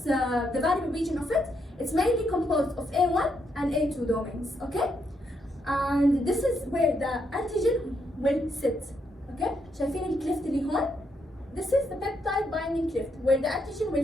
the variable region of it. It's mainly composed of A1 and A2 domains. Okay? And this is where the antigen will sit. Okay? شايفين الكليفت اللي هون؟ This is the peptide binding cleft where the antigen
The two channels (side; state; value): both; normal; correlation 0.78